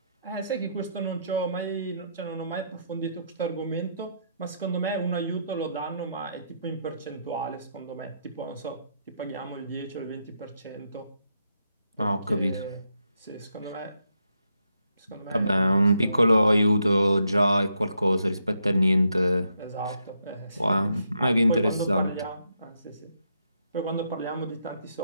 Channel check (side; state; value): both; inverted; correlation -0.78